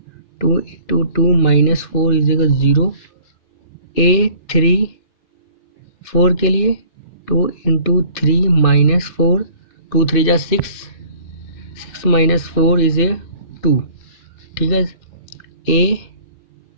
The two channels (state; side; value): late; right; 2.6 ms